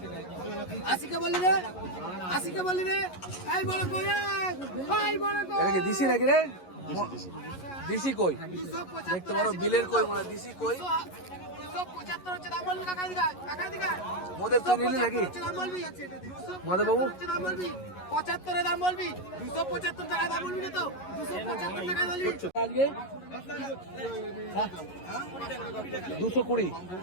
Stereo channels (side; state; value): right; late; 11 ms